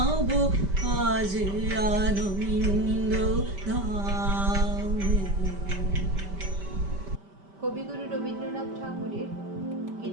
আজ আনন্দ ধামে। কবিগুরু রবীন্দ্রনাথ ঠাকুরের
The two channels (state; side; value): late; left; 5.1 ms